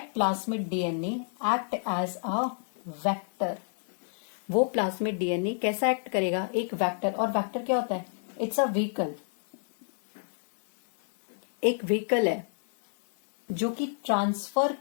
plasmid DNA act as a vector. वो प्लाज्मिड डीएनए कैसा एक्ट करेगा? एक वेक्टर। और वेक्टर क्या होता है? It's a vehicle. एक व्हीकल है जो कि ट्रांसफर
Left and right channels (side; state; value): right; silent; digital silence